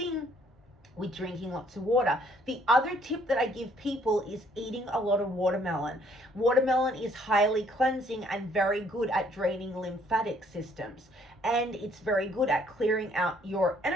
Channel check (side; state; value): both; normal; correlation 0.64